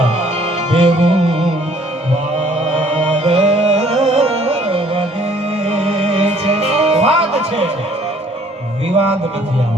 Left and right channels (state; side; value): normal; both; correlation 0.59